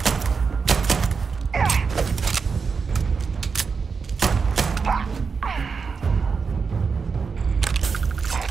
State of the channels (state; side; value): quieter; left; 5.3 dB